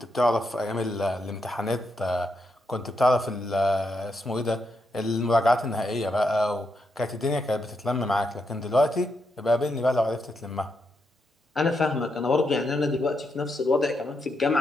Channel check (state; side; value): normal; both; correlation 0.82